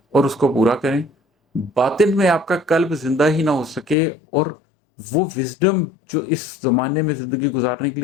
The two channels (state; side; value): drops out; right; at 4.0 s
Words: اور اس کو پورا کریں۔ باطن میں آپ کا قلب زندہ ہی نہ ہو سکے اور وہ وزڈم جو اس زمانے میں زندگی گزارنے کے